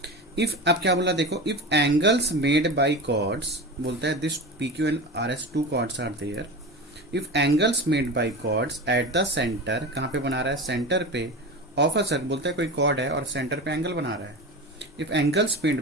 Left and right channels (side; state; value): both; normal; correlation 0.27